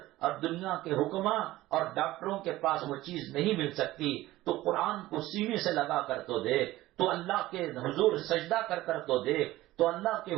اور دنیا کے حکماں اور ڈاکٹروں کے پاس وہ چیز نہیں مل سکتی. تو قرآن کو سینے سے لگا کر تو دیکھ، تو اللہ کے حضور سجدہ کر تو دیکھ، تو اللہ کے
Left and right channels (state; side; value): quieter; left; 16.8 dB